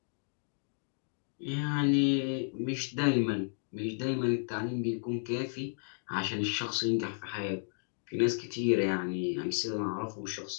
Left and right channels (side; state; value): right; silent; digital silence